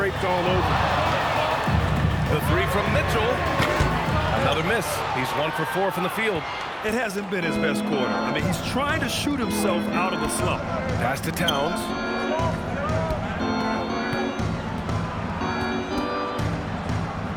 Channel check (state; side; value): identical; both; correlation 1.00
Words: all over. The 3 from Mitchell. Another miss. He's 1 for 4 from the field. It hasn't been his best quarter. I mean, he's trying to shoot himself out of the slump. Pass to Towns.